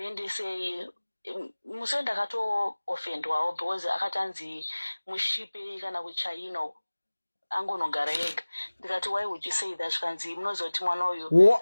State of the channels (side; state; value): both; inverted; correlation -1.00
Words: musi ndakatoofendwawo because akatanzi mushipe kana kuchaino angonogara ega ndikati why would you say that kanzi munoziva kuti mwana uyu